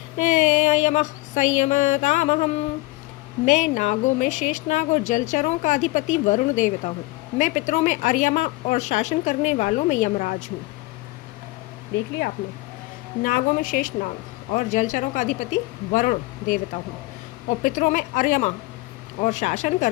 यमः संयमतामहं। मैं नागों में शेषनाग और जलचरों का अधिपति वरुण देवता हूँ। मैं पितरों में अर्यमा और शासन करने वालों में यमराज हूँ। देख लिया आपने। नागों में शेष नाग और जलचरों का अधिपति वरुण देवता हूँ, और पितरों में अर्यमा और शासन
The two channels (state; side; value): quieter; right; 20.8 dB